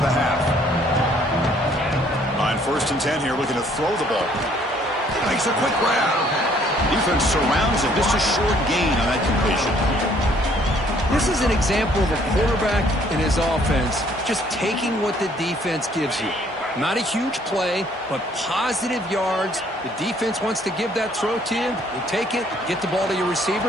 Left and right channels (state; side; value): normal; both; correlation 0.62